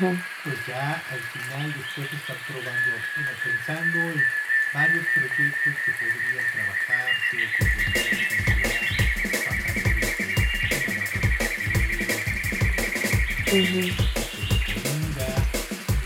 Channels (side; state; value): both; identical; correlation 1.00